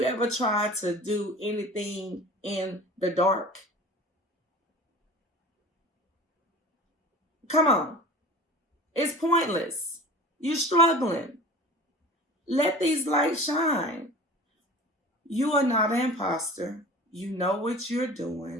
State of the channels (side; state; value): both; normal; correlation 0.39